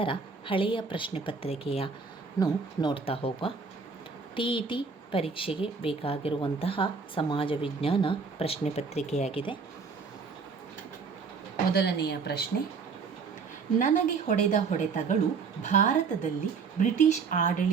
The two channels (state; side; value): quieter; left; 5.1 dB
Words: ಹಳೆಯ ಪ್ರಶ್ನೆ ಪತ್ರಿಕೆಯನ್ನು ನೋಡ್ತಾ ಹೋಗುವ. TET ಪರೀಕ್ಷೆಗೆ ಬೇಕಾಗಿರುವಂತಹ ಸಮಾಜ ವಿಜ್ಞಾನ ಪ್ರಶ್ನೆ ಪತ್ರಿಕೆಯಾಗಿದೆ. ಮೊದಲನೆಯ ಪ್ರಶ್ನೆ: ನನಗೆ ಹೊಡೆದ ಹೊಡೆತಗಳು ಭಾರತದಲ್ಲಿ ಬ್ರಿಟಿಷ್